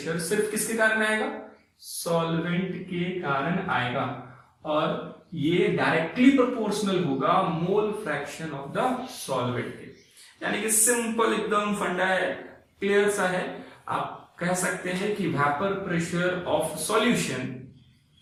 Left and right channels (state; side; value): identical; both; correlation 1.00